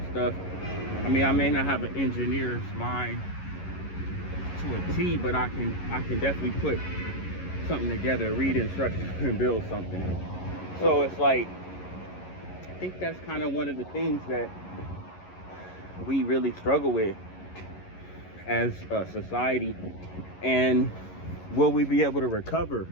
stuff. I mean, I may not have an engineer's mind to a T, but I can definitely put something together, read instructions, and build something. So it's like, I think that's kind of one of the things that we really struggle with as a society. And will we be able to recover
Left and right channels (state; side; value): late; right; 11 ms